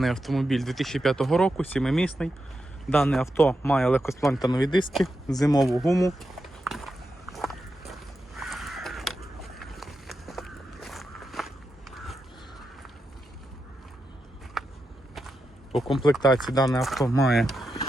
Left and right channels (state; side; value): normal; both; correlation 0.87